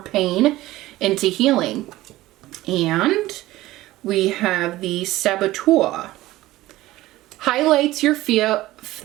pain into healing. And we have the saboteur. Highlights your fear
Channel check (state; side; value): quieter; left; 16.9 dB